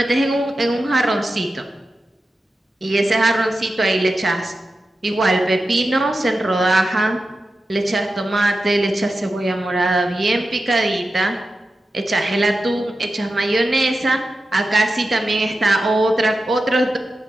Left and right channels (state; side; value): normal; both; correlation 0.92